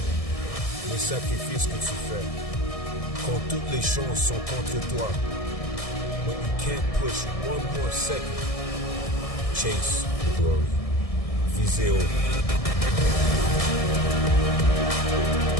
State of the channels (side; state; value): right; late; 1.6 ms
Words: Le sacrifice que tu fais, quand toutes les chances sont contre toi, when you can't push one more second. Chase the glory. Visez haut.